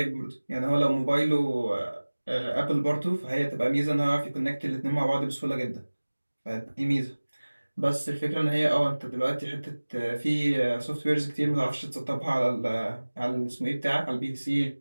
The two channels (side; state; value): both; inverted; correlation -1.00